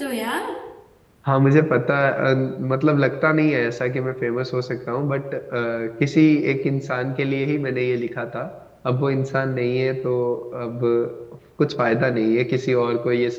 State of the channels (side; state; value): both; identical; correlation 1.00